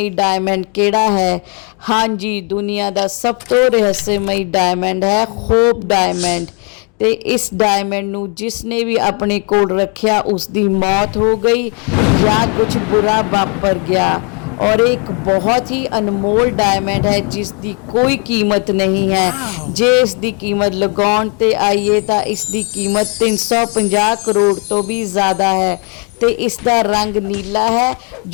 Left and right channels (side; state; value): right; quieter; 35.8 dB